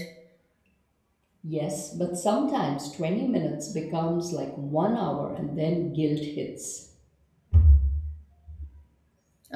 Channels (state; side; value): identical; both; correlation 1.00